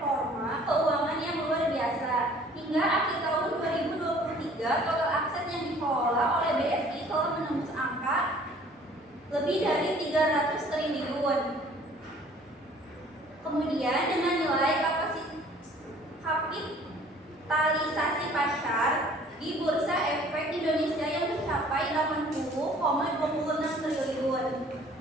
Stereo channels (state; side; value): normal; both; correlation 0.53